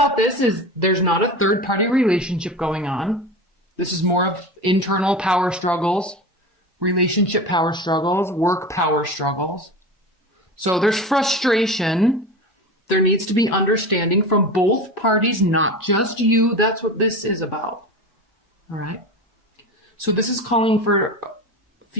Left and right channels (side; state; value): both; normal; correlation 0.28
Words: this is there's not a third-party relationship going on. This is more of internal power struggles, relationship power struggles, work power struggles. So there's frustration. There needs to be understanding from both parties, not just you. That's what this is about. All right? So this is calling for a